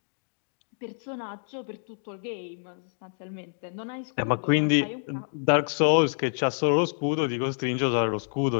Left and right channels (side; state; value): right; silent; digital silence